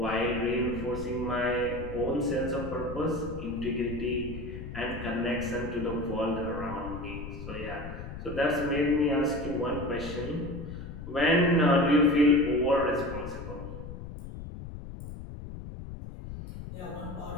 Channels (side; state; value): left; noise; rumble, 10 dB below the sound